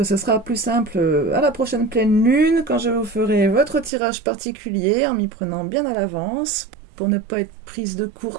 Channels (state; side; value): drops out; left; at 3.9 s